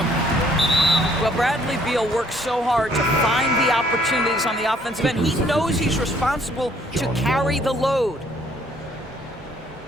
Well, Bradley Beal works so hard to find the opportunities on the offensive end. He knows he's responsible to carry the load.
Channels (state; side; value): normal; both; correlation 0.63